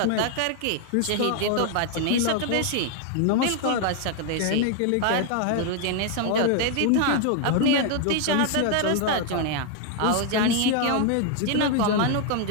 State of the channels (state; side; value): different; both; correlation 0.00